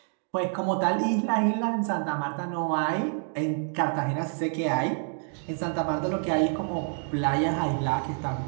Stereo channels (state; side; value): silent; left; 55 dB below the other